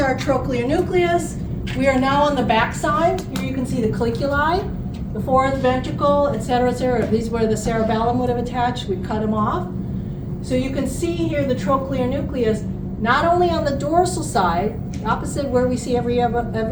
trochlear nucleus. We are now on the back side. Here you can see the colliculi, the fourth ventricle, et cetera, et cetera. These were the cerebellum would have attached. We cut them off. So you can see here the trochlear nucleus, not only on the dorsal side, opposite where we see every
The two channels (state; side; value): identical; both; correlation 1.00